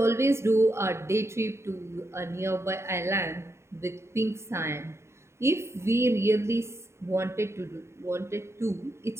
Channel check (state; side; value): late; left; 0.13 ms